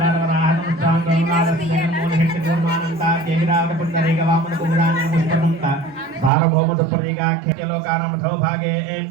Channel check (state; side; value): drops out; left; at 6.3 s